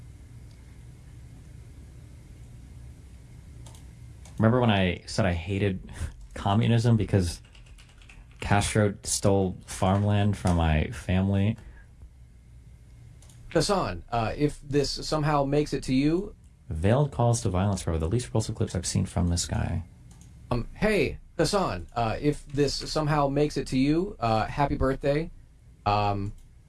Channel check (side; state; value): both; identical; correlation 1.00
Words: Remember when I said I hated communism because Castro stole farmland from my family? Hassan, if this somehow makes it to you... Veiled calls to violence were the least repulsive clips I've seen from this guy. Hey, Hassan, if this somehow makes it to you, happy birthday. Been